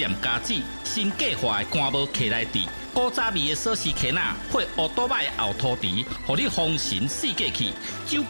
家子，新计划的干无客来地，古早味的锁匙圈仔配乌多摆的后涂池，互你丰神四界去。酒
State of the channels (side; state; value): both; inverted; correlation -1.00